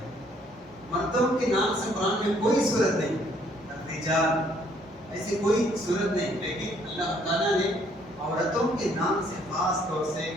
مردوں کے نام سے قرآن میں کوئی صورت نہیں، رجال ایسی کوئی صورت نہیں، لیکن اللہ تعالیٰ نے عورتوں کے نام سے خاص طور سے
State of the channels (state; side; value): normal; both; correlation 0.65